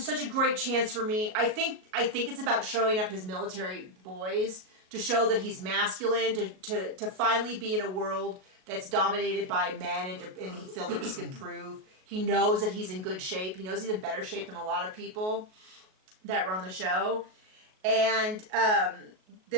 such a great chance for me. I think it's about showing up his military boys to show that he's masculine, to finally be in a world that's dominated by men, and he feels like this can prove. He knows that he's in good shape. He knows he's in better shape than a lot of people that were on the show. And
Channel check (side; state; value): left; late; 38 ms